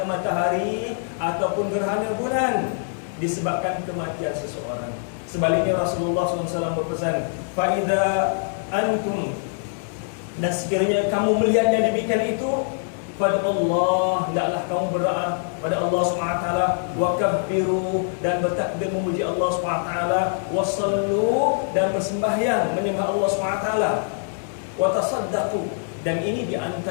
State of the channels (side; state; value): right; silent; 63 dB below the other